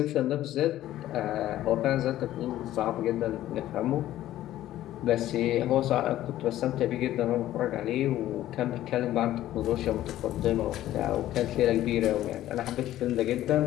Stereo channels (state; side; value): quieter; right; 13.7 dB